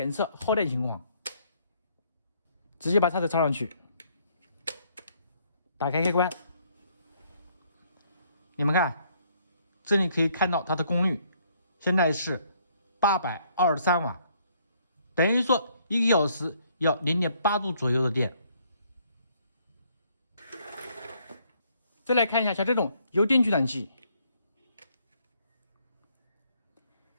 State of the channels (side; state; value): both; inverted; correlation -0.67